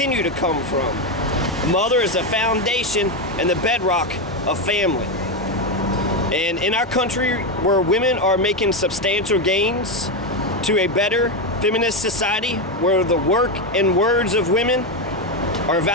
to come from. A mother is the foundation and the bedrock of family. And in our country, where women are making substantial gains to a better feminist society, where the work and words of women are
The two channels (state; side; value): normal; both; correlation 0.09